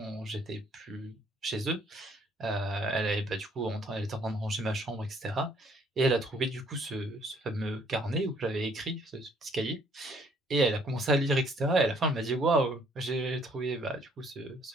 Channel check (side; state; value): both; normal; correlation 0.63